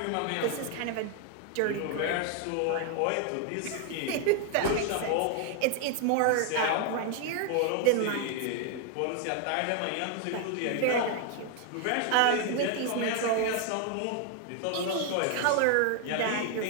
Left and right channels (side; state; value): both; different; correlation 0.00